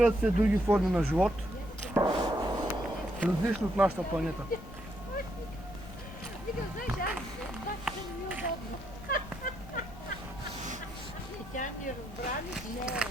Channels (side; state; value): left; noise; rumble, 14 dB below the sound